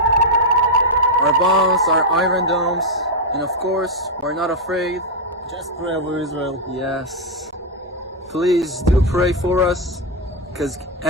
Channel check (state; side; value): normal; both; correlation 0.01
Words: bombs, our iron domes, and of course, we're not afraid. Just pray over Israel. Yes, please do pray for us, because